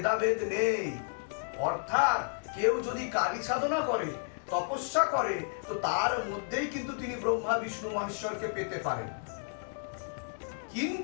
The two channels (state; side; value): silent; right; digital silence